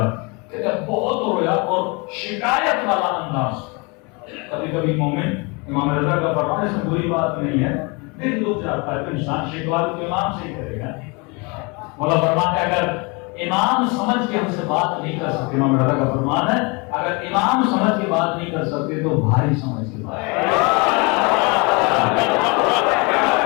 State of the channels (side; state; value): right; quieter; 29.3 dB